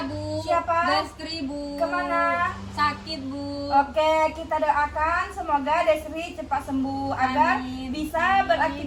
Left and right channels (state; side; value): identical; both; correlation 1.00